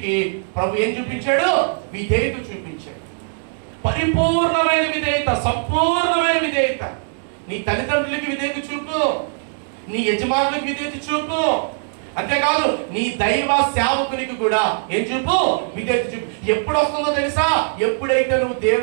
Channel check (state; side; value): silent; left; 65 dB below the other